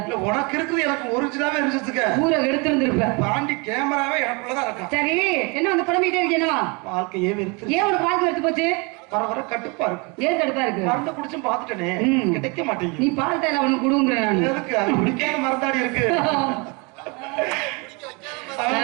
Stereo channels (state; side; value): quieter; left; 29.9 dB